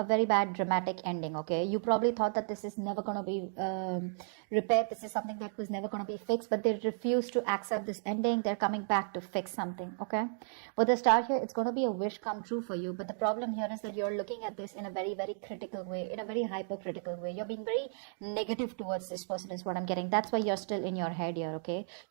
bad dramatic ending. Okay, you probably thought that this is never gonna be repaired. This is something that was never gonna be fixed, but they refuse to accept this ending. They're coming back to fix something. Okay, with the Star here, it's gonna be a wish come true for you. But the problem here is that you're looking at this in a very, very critical way, in a very hypercritical way. You're being very negative towards this person, is what I'm getting. That's why you're still in your head here. Okay,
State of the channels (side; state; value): left; silent; digital silence